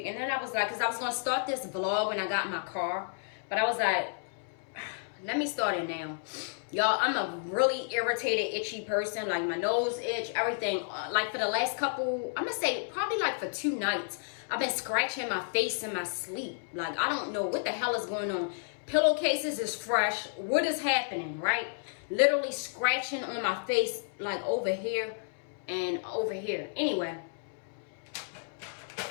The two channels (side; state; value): right; silent; 57 dB below the other